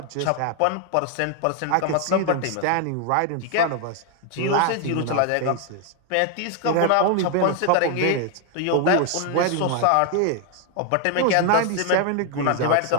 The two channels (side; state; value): both; different; correlation 0.00